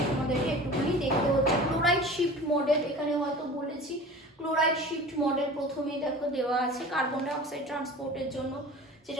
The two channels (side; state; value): both; normal; correlation 0.39